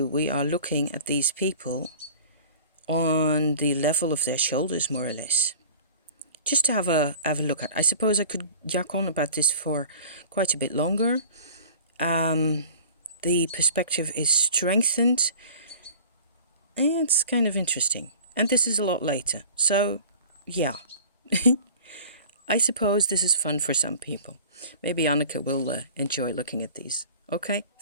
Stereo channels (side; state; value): both; inverted; correlation -0.43